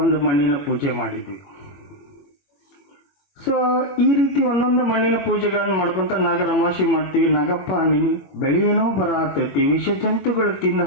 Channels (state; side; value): late; right; 21 ms